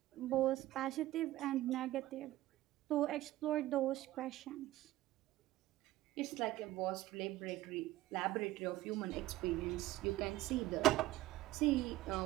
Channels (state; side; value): quieter; left; 16.2 dB